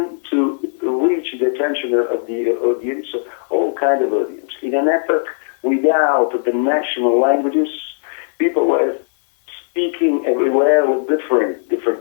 to reach the attention of the audience, all kind of audience. In an epoch without the national languages, people were speaking everywhere with different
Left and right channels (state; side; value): silent; right; digital silence